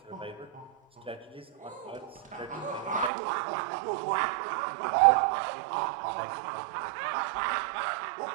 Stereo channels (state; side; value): drops out; left; at 3.1 s